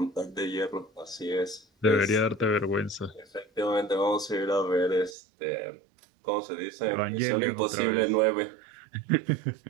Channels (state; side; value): drops out; left; at 5.2 s